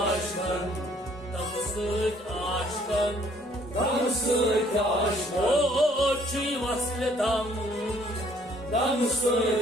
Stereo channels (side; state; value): both; normal; correlation 0.62